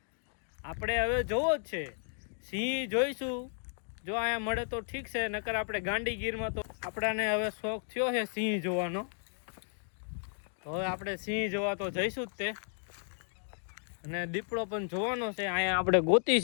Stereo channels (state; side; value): silent; right; digital silence